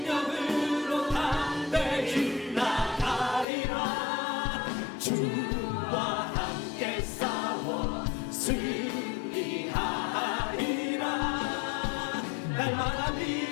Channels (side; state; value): right; drops out; at 3.5 s